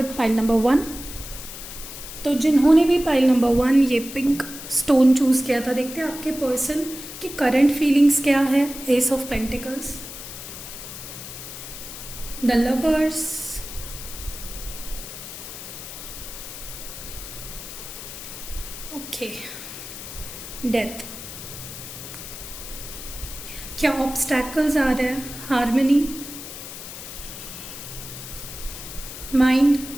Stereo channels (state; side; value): noise; left; hiss, 11 dB below the sound